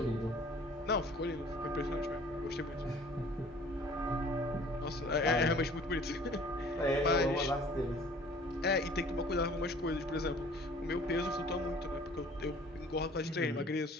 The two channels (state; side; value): normal; both; correlation 0.51